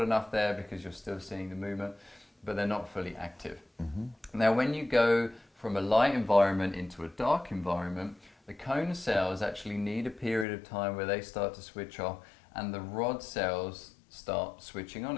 enough there because you're still seeing the movement, but they're not fully active. Now when you go from a light environment into a dark environment, the cone cells actually need a period of time where they start to switch off and the rod cells start switching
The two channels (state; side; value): drops out; right; at 10.5 s